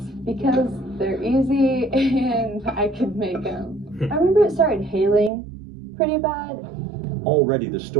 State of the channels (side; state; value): left; drops out; at 5.3 s